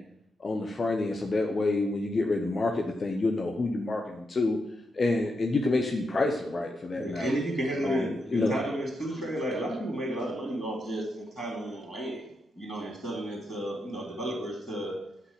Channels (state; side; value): normal; both; correlation 0.84